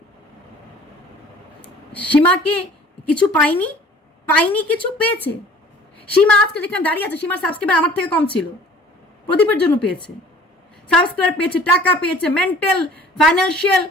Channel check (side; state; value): both; normal; correlation 0.49